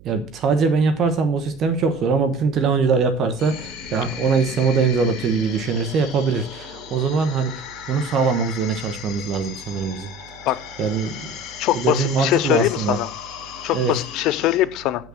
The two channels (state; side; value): noise; right; hum, 23 dB below the sound